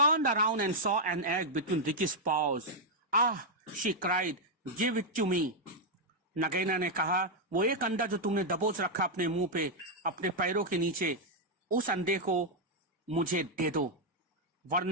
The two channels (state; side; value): normal; both; correlation -0.02